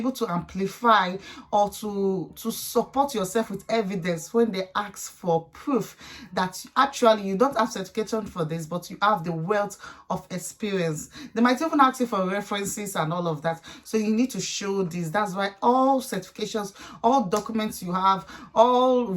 to amplify or to support yourself with evidence when they ask for proof that actually you don't have certification for this, but you have the wealth of experience. They might even ask you for references and all of that, so you need to show this. That's why all certifications, all documents you have, all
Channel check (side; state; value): both; identical; correlation 1.00